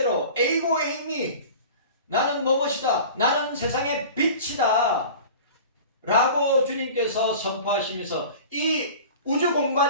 에이고 에이미, 나는 무엇이다, 나는 세상의 빛이다 라고 주님께서 선포하시면서 이 우주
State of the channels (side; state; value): both; inverted; correlation -0.39